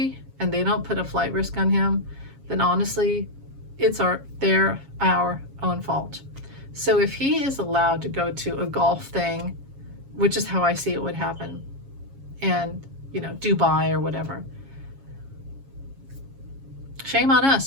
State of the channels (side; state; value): left; late; 7.3 ms